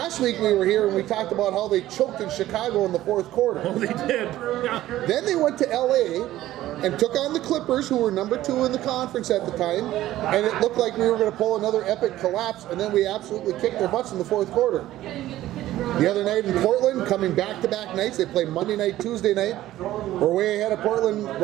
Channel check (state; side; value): quieter; left; 14.6 dB